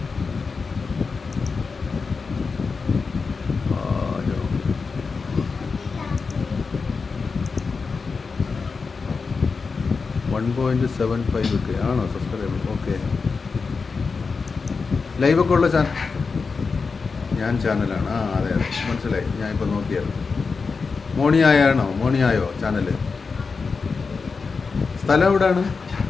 .75 ആണോ സബ്സ്ക്രൈബർ? ഓക്കെ. ലൈവൊക്കെ ഉള്ള ഞാൻ ചാനലാണ്. അതെ മനസ്സിലായി, ഞാൻ ഇപ്പോൾ നോക്കിയായിരുന്നു. മോണിയായോ ചാനൽ? സ്ഥലം എവിടെയാണ്?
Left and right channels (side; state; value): right; quieter; 4.8 dB